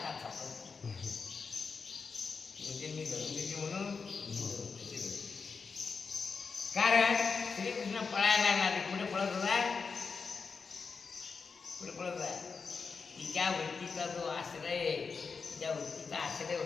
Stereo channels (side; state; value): right; quieter; 5.1 dB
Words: सापडतो. म्हणजे मी धरून देते म्हणून कारण श्रीकृष्ण पळायला लागला. पुढे पळत होता, पुढे पळत होता. तिच्या वृत्तीचा जो आश्रय, त्या वृत्तीचा आश्रय